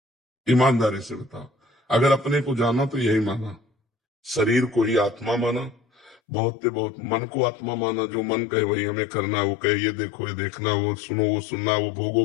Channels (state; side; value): drops out; right; at 6.2 s